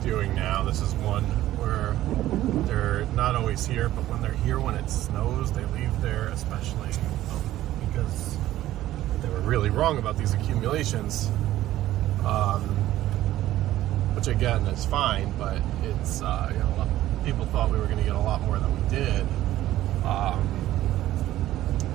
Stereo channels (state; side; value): quieter; left; 14.3 dB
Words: doing now, this is one where they're not always here, but when they're here, when it snows, they leave there, especially because they were really wrong about these accumulations, which again is fine, but it's, you know, people thought we were going to get a lot more than we did.